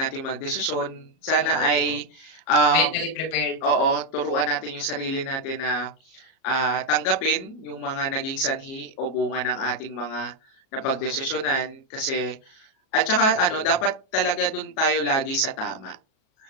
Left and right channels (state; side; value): late; right; 37 ms